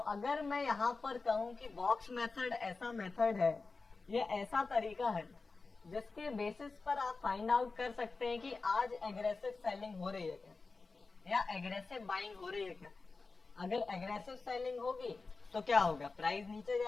मैं यहाँ पर कहूँ कि बॉक्स मेथड ऐसा मेथड है या ऐसा तरीका है जिसके बेसिस पर आप फाइंड आउट कर सकते हैं कि आज एग्रेसिव सेलिंग हो रही है क्या या एग्रेसिव बाइंग हो रही है क्या। अगर एग्रेसिव सेलिंग होगी तो क्या होगा? प्राइस नीचे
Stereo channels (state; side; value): quieter; right; 4.0 dB